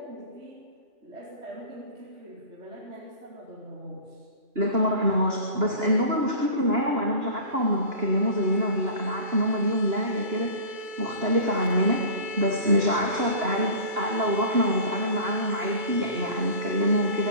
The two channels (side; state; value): left; late; 2.9 ms